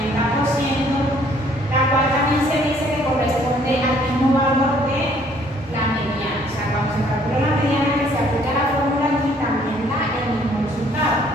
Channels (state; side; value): normal; both; correlation 0.62